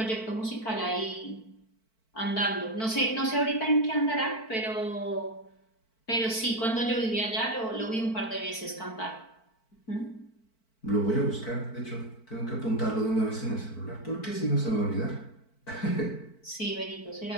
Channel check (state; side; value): late; right; 4.5 ms